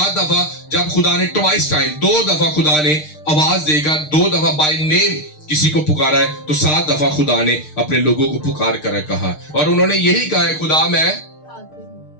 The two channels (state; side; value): late; right; 6.6 ms